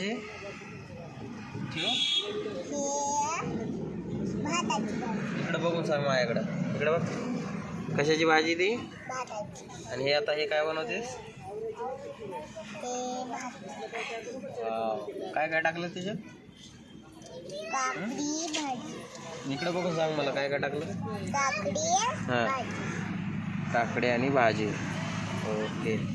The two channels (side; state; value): both; identical; correlation 1.00